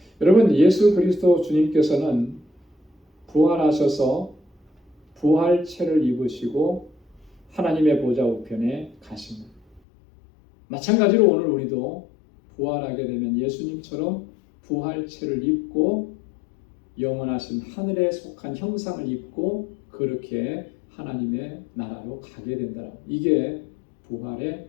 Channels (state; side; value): drops out; right; at 9.8 s